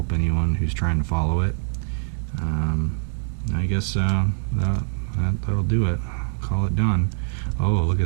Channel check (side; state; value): left; silent; digital silence